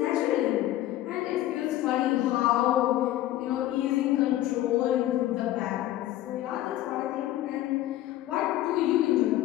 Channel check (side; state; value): right; quieter; 14.4 dB